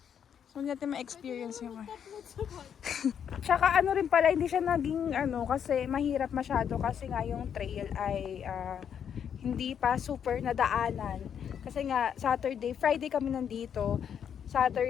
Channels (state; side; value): quieter; right; 8.3 dB